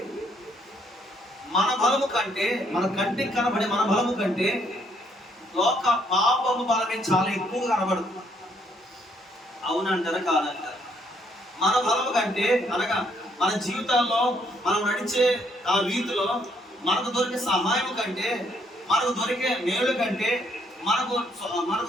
మన బలము కంటే, మన కంటికి కనబడే మన బలము కంటే లోక పాపము బలమే చాలా ఎక్కువగా కనబడుతుంది. అవునంటారా కాదంటారా? మన బలము కంటే, అనగా మన జీవితాల్లో మనం నడిచే ఆ రీతిలో మనకు దొరికే సహాయం కంటే, మనకు దొరికే మేలు కంటే, మనకు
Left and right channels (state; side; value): normal; both; correlation 0.70